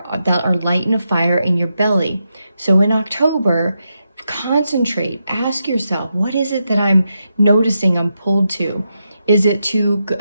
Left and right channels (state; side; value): inverted; both; correlation -0.85